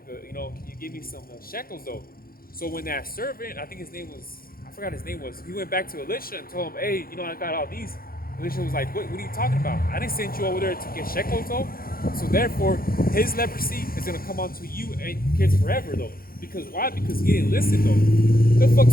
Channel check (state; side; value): late; right; 0.42 ms